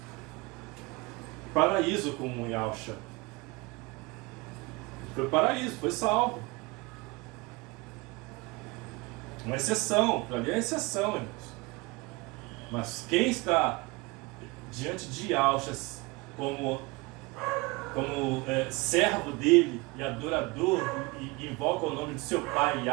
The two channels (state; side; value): quieter; left; 24.9 dB